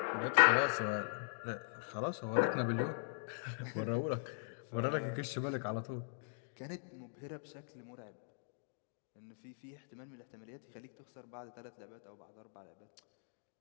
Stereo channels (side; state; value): right; silent; digital silence